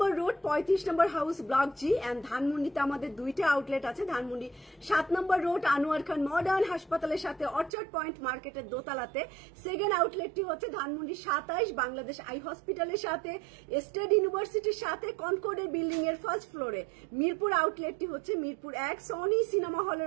road 35 number house block G. And ধানমন্ডিতে আমাদের দুইটা আউটলেট আছে। Dhanmondi 7 number road Anwar Khan modern হাসপাতালের সাথে অর্চার্ড পয়েন্ট মার্কেটের দোতলাতে। সেকেন্ড আউটলেটটি হচ্ছে ধানমন্ডি 27 বাংলাদেশ আই হসপিটালের সাথে, স্টেট ইউনিভার্সিটির সাথে, কনকর্ডের বিল্ডিং এর ফার্স্ট ফ্লোরে। মিরপুর আউটলেটটি হচ্ছে মিরপুর 1 সনি সিনেমা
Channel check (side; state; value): left; drops out; at 7.7 s